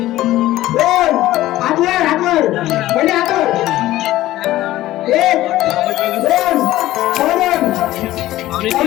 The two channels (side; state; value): right; quieter; 15.5 dB